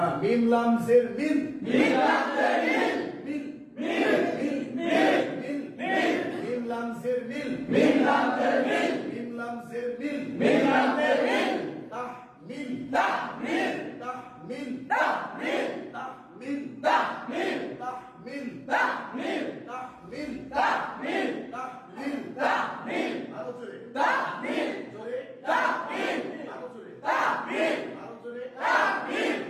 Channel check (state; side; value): identical; both; correlation 1.00